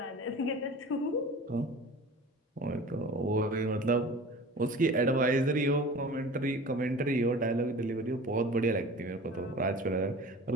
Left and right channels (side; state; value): both; normal; correlation 0.39